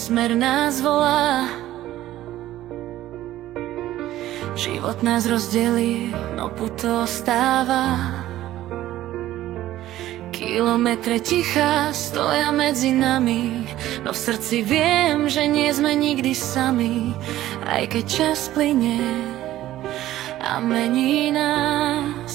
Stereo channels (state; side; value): quieter; left; 14.3 dB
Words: nás volá. Život nás rozdelí, no puto ostáva. Kilometre ticha stoja medzi nami, no v srdci viem, že nie sme nikdy sami. Aj keď čas plynie a mení